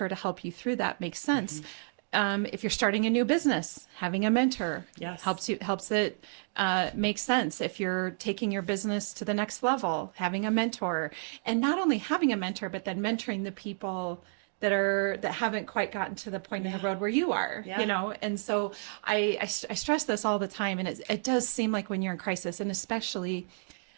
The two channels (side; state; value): left; silent; 57 dB below the other